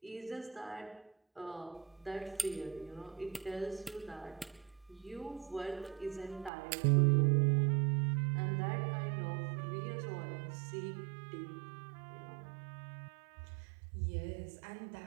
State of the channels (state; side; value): drops out; left; at 6.5 s